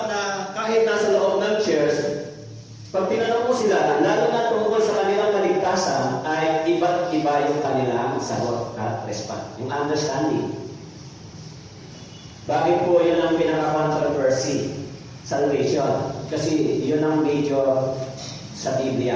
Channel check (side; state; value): both; identical; correlation 1.00